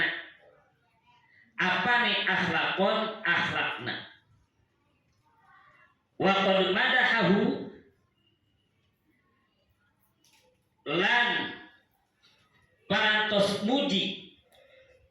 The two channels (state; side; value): identical; both; correlation 1.00